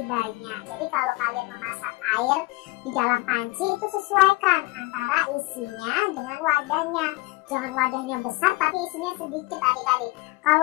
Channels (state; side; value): quieter; right; 22.7 dB